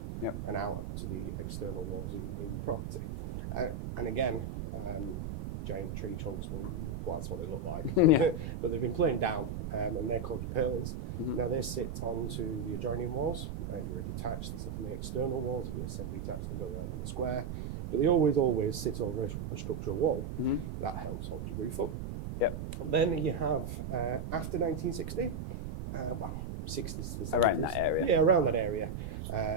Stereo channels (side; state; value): right; noise; rumble, 5 dB below the sound